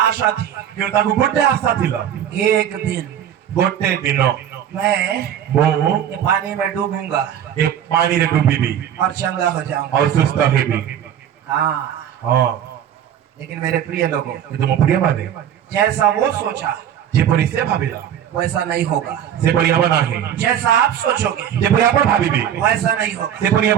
थी। क्यों ताकू गोटे आशा थिला एक दिन गोटे दिन मैं वो ये पानी में डूबूंगा एक पानी रे डूबी भी और चंगा हो जाऊंगा। और सुस्त है भी हाँ, हां लेकिन मेरे प्रिय लोगों, ये तो प्रिय माने जैसा वो सोचा जे परी से भाबीला वैसा नहीं होगा। से परी हम नाही जैसा आप सोचोगे जे परी आपण भाबीबे वैसा नहीं होगा। से परी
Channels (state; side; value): quieter; left; 9.9 dB